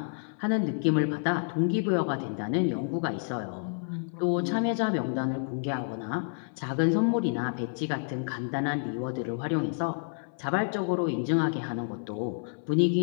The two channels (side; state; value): right; silent; 58 dB below the other